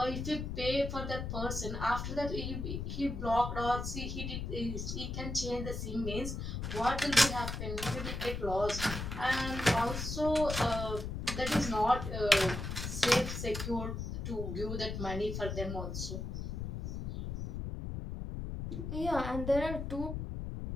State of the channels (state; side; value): noise; left; rumble, 4 dB below the sound